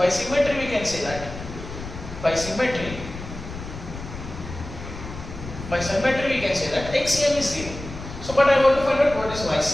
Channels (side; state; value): left; noise; rumble, 11 dB below the sound